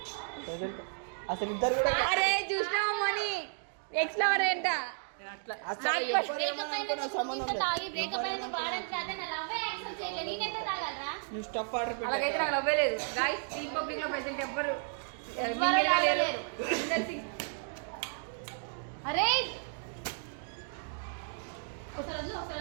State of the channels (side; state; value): left; silent; 56 dB below the other